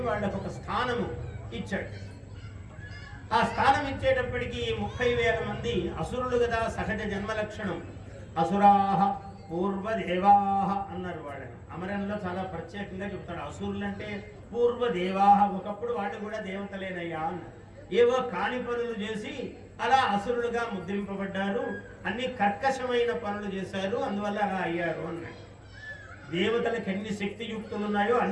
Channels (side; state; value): both; identical; correlation 1.00